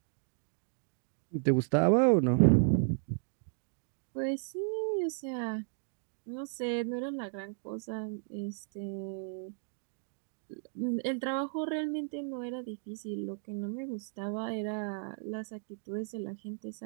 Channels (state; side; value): silent; left; digital silence